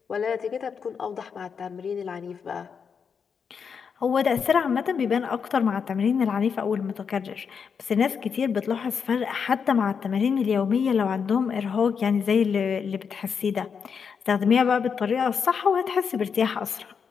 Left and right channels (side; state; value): right; quieter; 6.4 dB